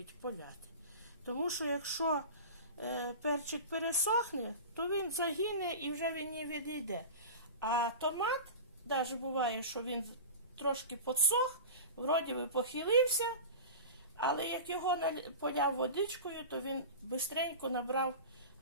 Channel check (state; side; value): inverted; both; correlation -0.31